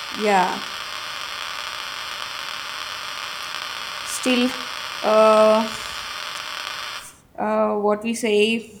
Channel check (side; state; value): both; identical; correlation 1.00